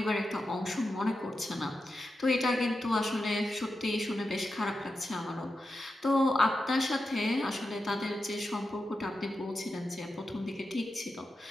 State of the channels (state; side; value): normal; both; correlation 0.90